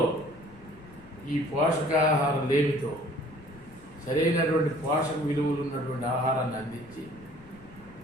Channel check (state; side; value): noise; left; rumble, 22 dB below the sound